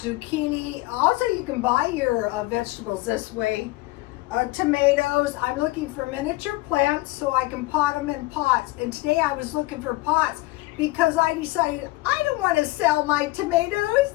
Also, you can buy your vegetables this way. Tomatoes. I'm looking for miniature plants so I can pot them in pots. And today I was looking for pots because I decided I don't want to sell my tomatoes.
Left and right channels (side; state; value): right; quieter; 19.9 dB